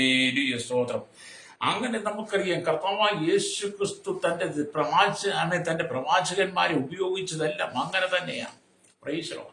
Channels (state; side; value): identical; both; correlation 1.00